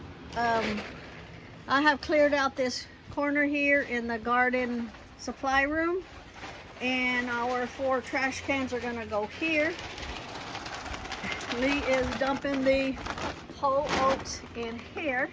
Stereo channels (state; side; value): identical; both; correlation 1.00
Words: I have cleared out this corner here in the garden supply room, and our 4 trash cans are gonna go here. Lee is dumping the whole oats in here.